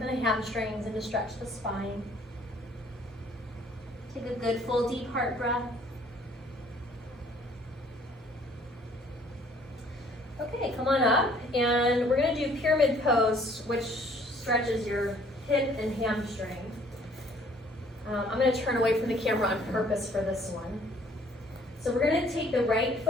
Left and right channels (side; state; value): both; normal; correlation 0.59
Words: the hamstrings and to stretch the spine. Take a good full deep heart breath. Okay, come on up, and we're going to do pyramid pose, which stretches your hip and hamstring. I'm going to turn away from the camera on purpose for this one. So we're going to take the right